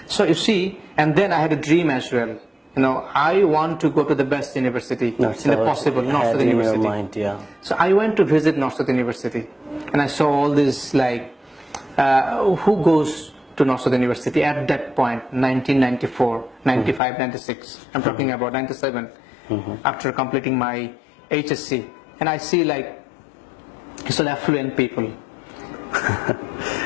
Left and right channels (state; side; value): drops out; right; at 17.0 s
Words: So you see, and then I had a dream as well. I want to go to the best university in the possible, North South University. Mind, So I went to visit North South University, and I saw all this, like, who goes to North South University at that point, 1994, 95, 96. I'm talking about 97, after completing my HSC. And I see, like, it's all affluent people.